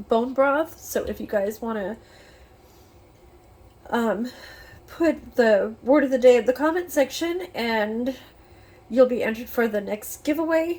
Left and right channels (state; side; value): identical; both; correlation 1.00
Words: bone broth. So if you guys want to put the word of the day in the comment section, and you'll be entered for the next